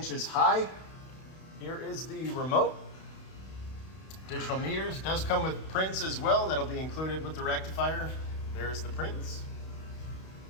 high. Here is the remote. Digital meters. Does come with prints as well. That'll be included with the rectifier. There's the prints.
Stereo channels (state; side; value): late; right; 32 ms